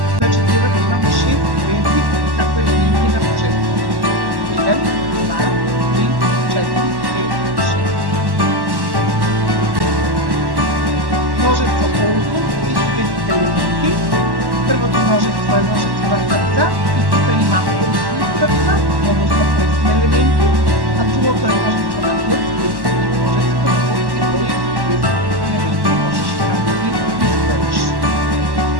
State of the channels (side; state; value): left; late; 1.1 ms